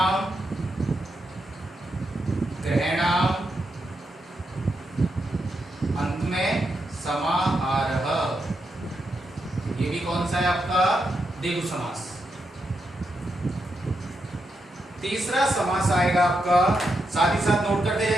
ग्रहणाम, अंत में समाहारः। ये भी कौन सा है आपका? द्विगु समास। तीसरा समास आएगा आपका, साथ ही साथ नोट करते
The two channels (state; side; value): normal; both; correlation 0.84